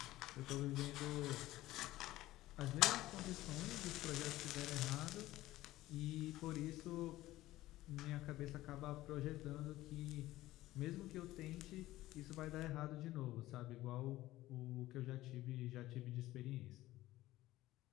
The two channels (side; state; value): right; quieter; 16.3 dB